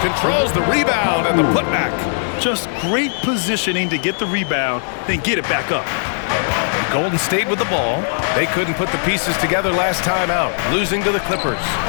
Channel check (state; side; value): silent; right; 67 dB below the other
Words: Controls the rebound and the putback. Just great positioning to get the rebound, then get it back up. Golden State with the ball. They couldn't put the pieces together last time out, losing to the Clippers.